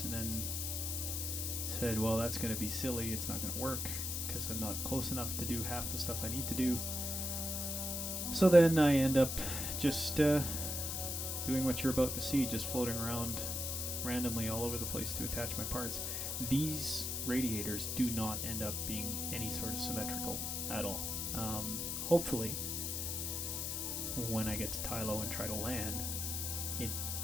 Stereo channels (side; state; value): left; noise; hiss, 2 dB below the sound